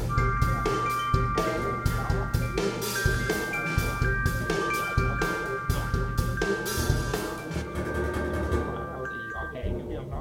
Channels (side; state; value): both; identical; correlation 1.00